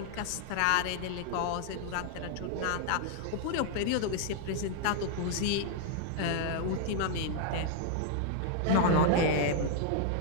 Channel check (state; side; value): different; both; correlation 0.00